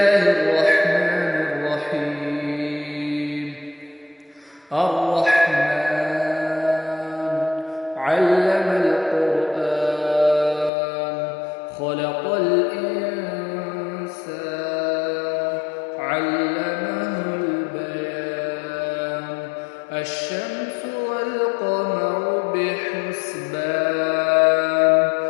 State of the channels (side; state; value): right; drops out; at 10.7 s